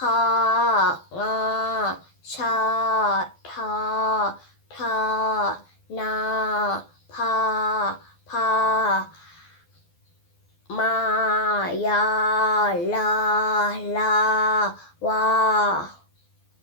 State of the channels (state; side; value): late; right; 12 ms